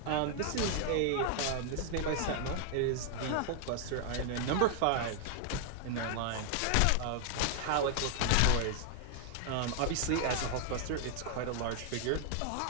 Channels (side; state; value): both; different; correlation 0.00